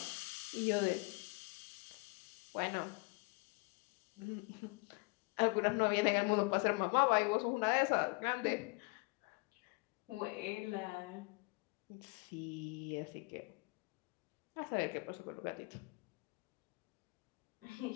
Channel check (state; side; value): quieter; right; 28.4 dB